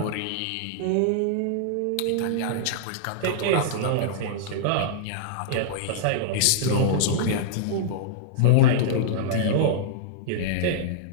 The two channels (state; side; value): different; both; correlation -0.02